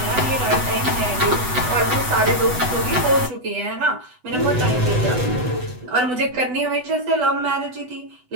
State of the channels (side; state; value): left; late; 8.0 ms